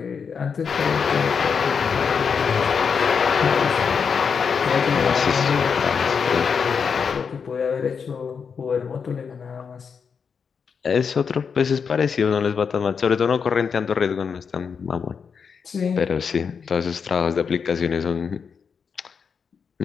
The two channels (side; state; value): right; quieter; 6.2 dB